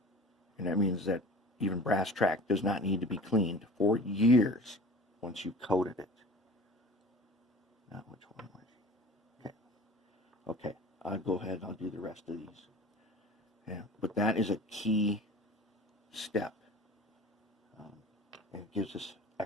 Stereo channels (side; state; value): both; normal; correlation 0.41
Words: And that means that even brass track does not need to be cleaned for years once you've coated it. Now, which one was it? Okay. Okay, I'll go ahead and I'll do the rest of these. Yeah, but that is a key step. And it gives us